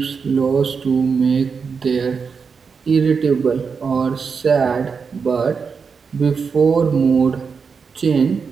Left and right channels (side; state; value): left; quieter; 5.6 dB